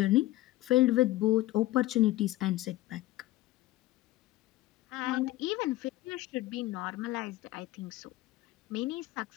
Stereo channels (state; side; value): quieter; right; 16.7 dB